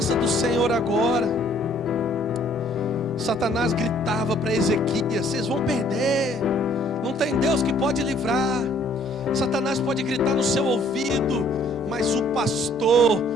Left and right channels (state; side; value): normal; both; correlation 0.60